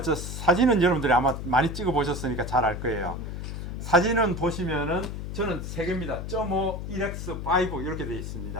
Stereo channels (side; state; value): left; noise; hum, 6 dB below the sound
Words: 여러분들이 아마 많이 찍어 보셨으니까 잘 알 거예요. 사진은 보시면은 저는 3개입니다. 0.5, 1x, 5 이렇게 되어